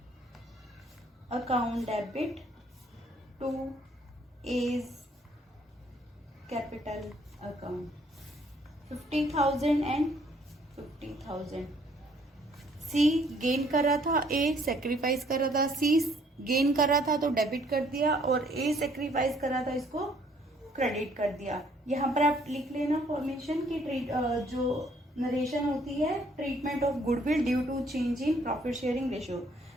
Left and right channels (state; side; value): normal; both; correlation 0.63